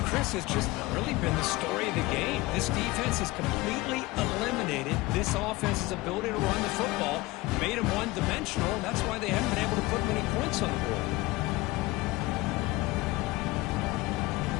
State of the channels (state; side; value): quieter; right; 20.6 dB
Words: Chris, has just really been the story of the game. This defense has completely eliminated this offense's ability to run the football, made them one-dimensional, and that's why they haven't been able to put many points on the board.